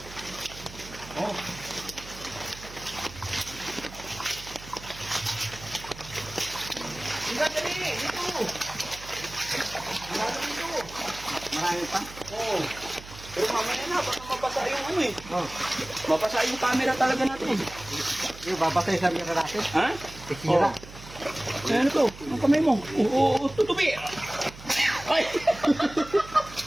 Oh. Halika, dali. Dito. Marami pa. Oo. Pero mamaya na, baka mabasa yung ano eh. Oh. Mabasa yung camera talaga natin. Yung babasay sa mira natin. Ha? Tikira. Ay, ano to? Ang kamay mo? Oo, tutubi. Ay!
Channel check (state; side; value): noise; right; hum, 16 dB below the sound